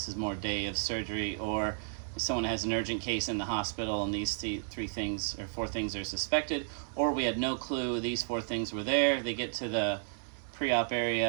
is more day of surgery, or if someone has an urgent case in the hospital and these 3 things or 4 things are suspected, or we had no clue these 4 things were there. They get to the pre-op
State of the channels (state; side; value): silent; left; 56 dB below the other